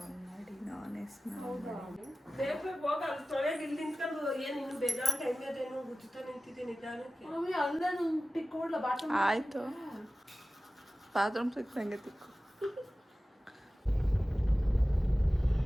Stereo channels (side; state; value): both; normal; correlation 0.96